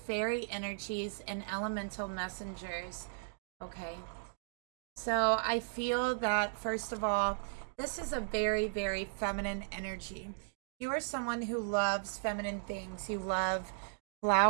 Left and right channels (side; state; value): left; silent; digital silence